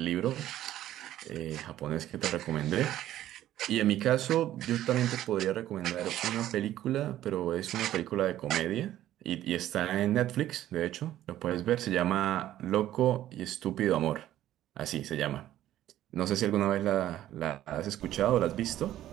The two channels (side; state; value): left; quieter; 13.0 dB